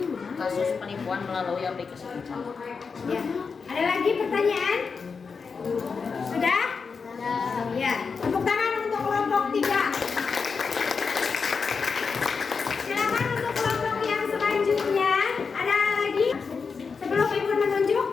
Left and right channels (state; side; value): quieter; right; 5.3 dB